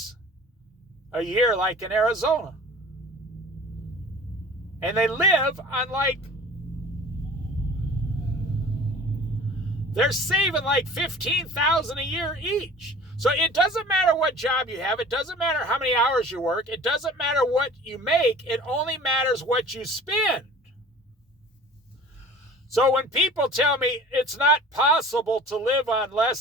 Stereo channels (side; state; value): both; normal; correlation 0.44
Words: a year like in Arizona. And they live on they're saving like $15,000 a year each. So it doesn't matter what job you have. It doesn't matter how many hours you work. It doesn't matter what you make. It only matters what you spend. So when people tell me it's not possible to live on